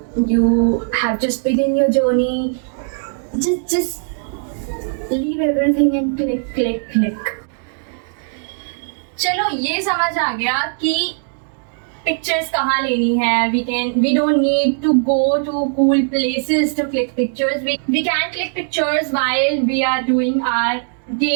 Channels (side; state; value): left; silent; digital silence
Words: you have just begun your journey. Just leave everything and click. चलो ये समझ आ गया कि pictures कहाँ लेनी है. We don't need to go to cool places to click pictures. We can click pictures while we are doing our